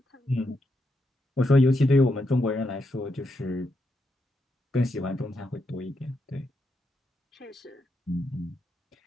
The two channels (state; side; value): normal; both; correlation 0.82